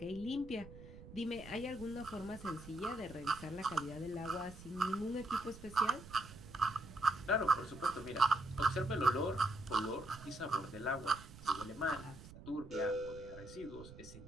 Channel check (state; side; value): noise; right; rumble, 16 dB below the sound